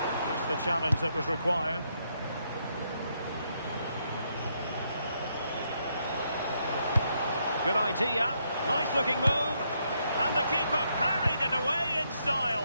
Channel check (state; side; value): inverted; both; correlation -0.76